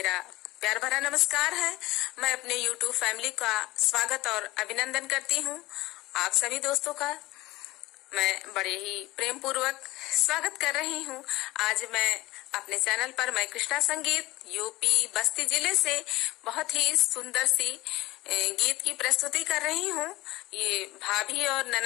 प्यार भरा नमस्कार है। मैं अपने YouTube फैमिली का स्वागत और अभिनंदन करती हूँ। आप सभी दोस्तों का मैं बड़े ही प्रेम पूर्वक स्वागत कर रही हूँ। आज मैं अपने चैनल पर मैं कृष्णा संगीत यूपी बस्ती जिले से बहुत ही सुंदर सी गीत की प्रस्तुति कर रही हूँ। ये भाभी और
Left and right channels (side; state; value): right; quieter; 19.1 dB